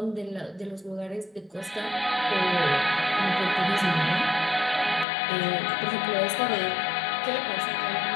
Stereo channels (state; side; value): drops out; right; at 5.1 s